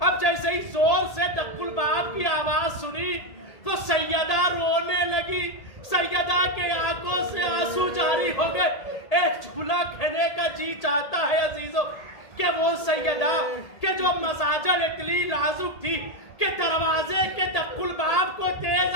جیسے ہی زور سے دق الباب کی آواز سنی تو سیدہ رونے لگی. سیدہ کے آنکھوں سے آنسو جاری ہو گئے. ایک جملہ کہنے کا جی چاہتا ہے عزیزوں کہ وہ سیدہ کہ جو مساجل اتنی نازک تھی کہ دروازے کے دق الباب کو تیز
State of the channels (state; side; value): late; right; 1.8 ms